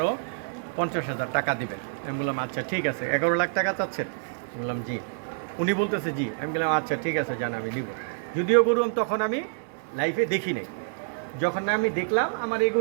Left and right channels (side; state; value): left; silent; digital silence